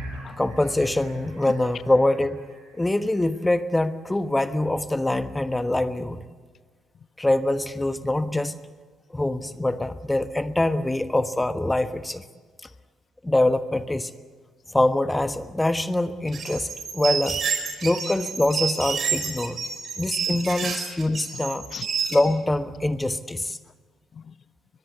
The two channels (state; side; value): normal; both; correlation 0.95